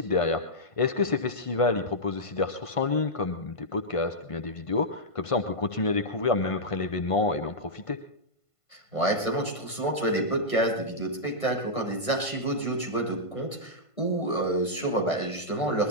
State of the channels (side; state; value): right; late; 1.5 ms